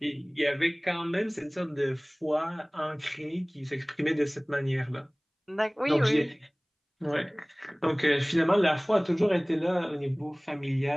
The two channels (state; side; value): identical; both; correlation 1.00